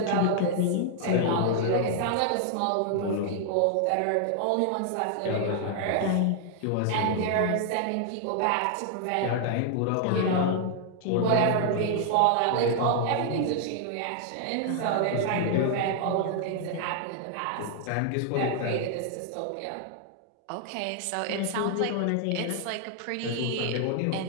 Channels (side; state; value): both; different; correlation 0.00